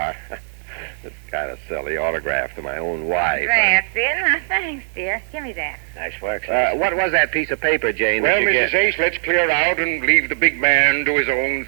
It's kind of silly autograph to my own wife. That's it. Now, thanks, dear. Give me that. Nice work. What was that piece of paper, Jane? Well, that you Mrs. get? Ace, let's clear out and leave the big man to his own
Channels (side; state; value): left; silent; 66 dB below the other